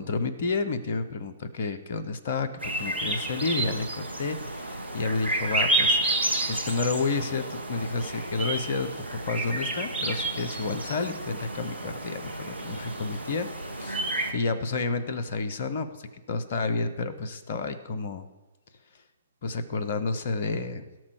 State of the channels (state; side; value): inverted; both; correlation -0.45